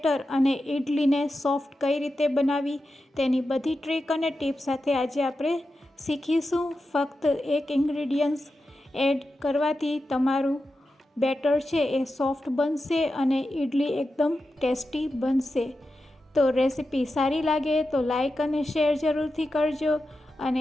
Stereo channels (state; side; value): normal; both; correlation 0.90